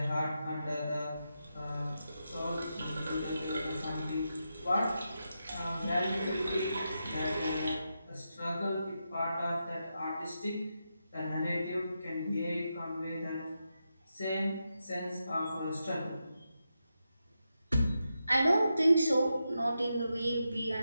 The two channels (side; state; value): both; inverted; correlation -0.87